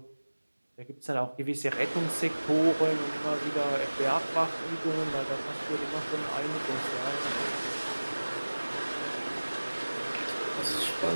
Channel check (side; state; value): both; inverted; correlation -1.00